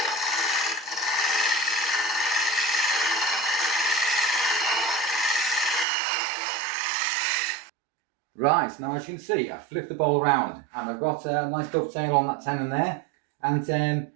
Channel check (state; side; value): drops out; left; at 5.9 s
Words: Right, now as you can see, I've flipped the bowl around and I've got a nice dovetail on that tenon there. And